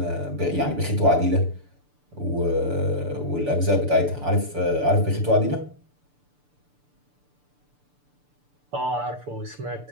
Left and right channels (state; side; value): late; left; 6.8 ms